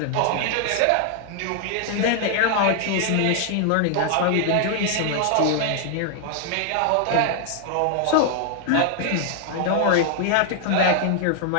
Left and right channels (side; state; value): both; different; correlation 0.00